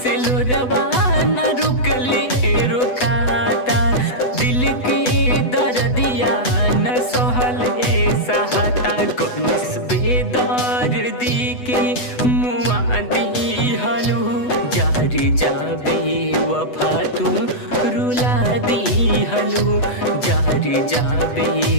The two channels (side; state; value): right; late; 8.0 ms